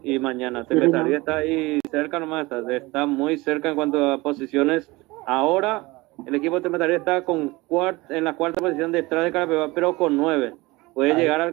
Y mañana. Tembetarí está ahí cerca nomás, está muy cerca en cuanto a posiciones. Ahora el equipo de Tembetarí está en la cuarta posición detrás de Carapeguá, pero con 9. Puede llegar a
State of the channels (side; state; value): left; quieter; 22.1 dB